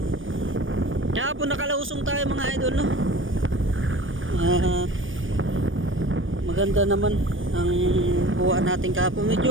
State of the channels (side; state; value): left; late; 0.57 ms